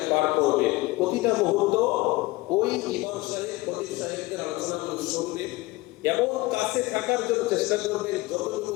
পার করবেন। প্রতিটা মুহূর্ত ওই ইমাম সাহেব, খতিব সাহেবদের আলোচনাগুলো শুনবেন এবং কাছে থাকার জন্য চেষ্টা করবেন। যতটুকু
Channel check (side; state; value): right; quieter; 20.5 dB